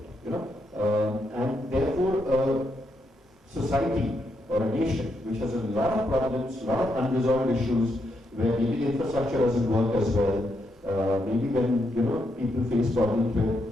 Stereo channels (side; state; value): both; normal; correlation 0.80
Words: And therefore society or a nation which has a lot of problems, a lot of unresolved issues, where maybe the infrastructure doesn't work as well, maybe when people face problems